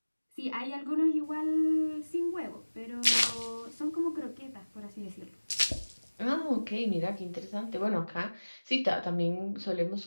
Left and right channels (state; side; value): inverted; both; correlation -1.00